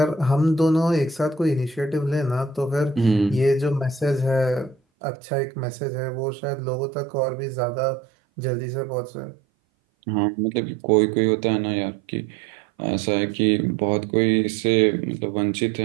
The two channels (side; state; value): left; drops out; at 4.8 s